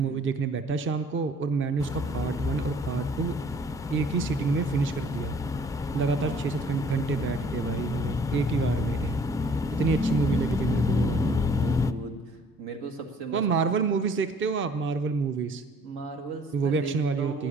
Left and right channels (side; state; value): both; normal; correlation 0.56